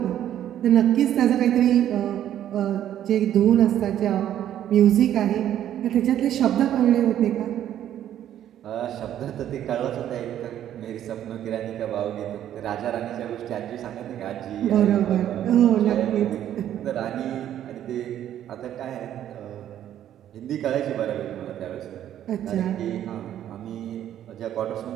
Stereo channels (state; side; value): quieter; left; 11.1 dB